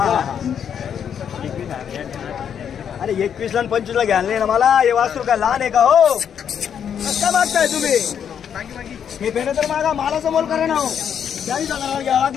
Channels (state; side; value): quieter; right; 8.2 dB